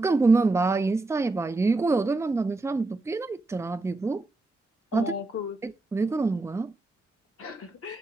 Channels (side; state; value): left; quieter; 3.2 dB